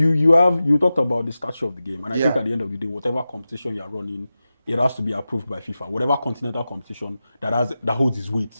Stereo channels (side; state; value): both; inverted; correlation -0.94